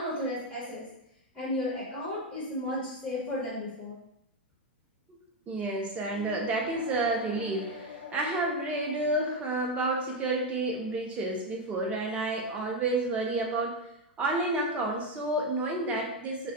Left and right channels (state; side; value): normal; both; correlation 0.08